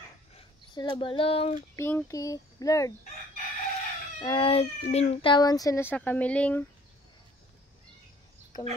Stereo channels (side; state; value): both; normal; correlation 0.56